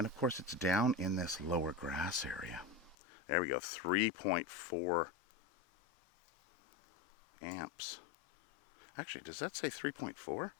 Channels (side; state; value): right; drops out; at 3.0 s